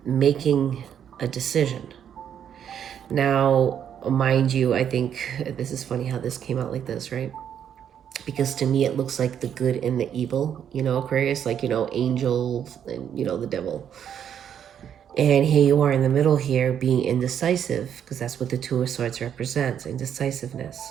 making a decision. Now, mind you, I think this is funny how this came out like this, right? Because to me, it looks like the good and the evil, Aquarius, like, angels and, the devil. And here you are in the middle here being indecisive, because that's what the Two of Swords represents, indecisiveness.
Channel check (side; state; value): left; quieter; 9.0 dB